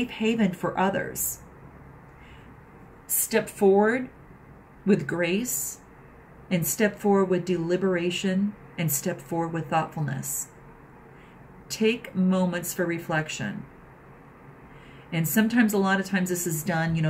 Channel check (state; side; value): identical; both; correlation 1.00